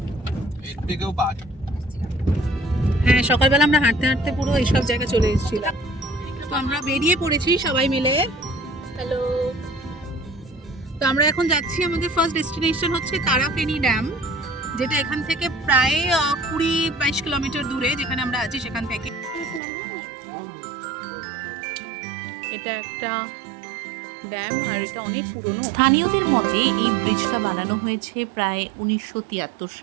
এর থেকেও বাদ। হ্যাঁ, সকালবেলা আমরা হাঁটতে হাঁটতে পুরো এইসব জায়গায় চলে এসেছিলাম। তো আমরা বেরিয়ে পড়েছি সবাই মিলে। হ্যালো। তো আমরা এখন যাচ্ছি, আমাদের ফার্স্ট ডেস্টিনেশন হচ্ছে তারাফেনী ড্যাম, যেটা এখান থেকে প্রায় 20-22 কিলোমিটার দূরে, যেখানে আমরা আছি সেখান থেকে। এটা একটা ড্যাম আর এটা অনেক পুরনো। স্থানীয়দের মতে এই ব্রিজটা বানানো হয়েছে প্রায় 1973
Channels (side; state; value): left; drops out; at 19.6 s